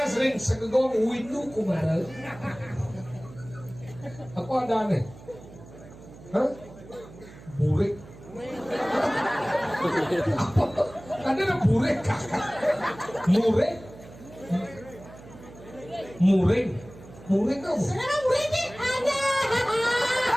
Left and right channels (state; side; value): noise; right; hum, 19 dB below the sound